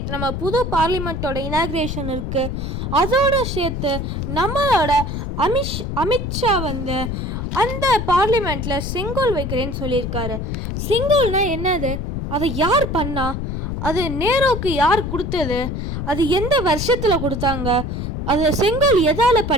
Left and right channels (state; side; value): noise; left; rumble, 4 dB below the sound